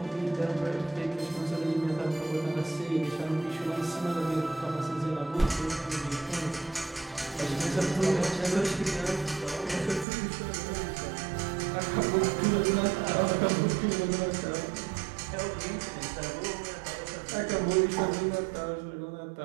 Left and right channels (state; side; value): drops out; left; at 10.1 s